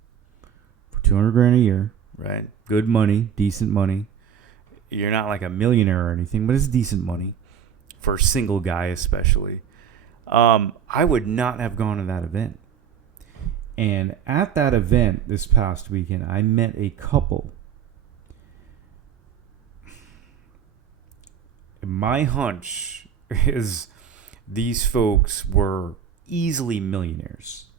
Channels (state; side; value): quieter; left; 8.3 dB